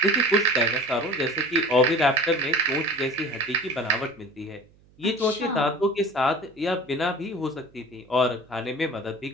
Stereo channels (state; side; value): noise; right; hum, 30 dB below the sound